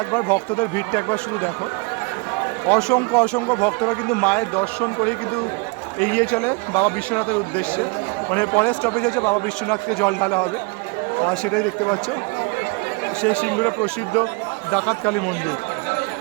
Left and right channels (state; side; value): quieter; left; 29.6 dB